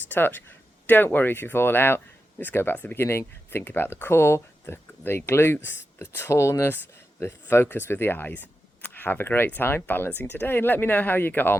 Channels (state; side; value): normal; both; correlation 0.90